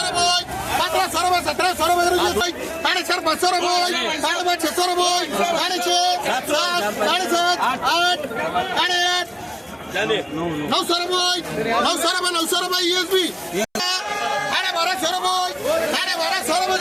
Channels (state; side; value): identical; both; correlation 1.00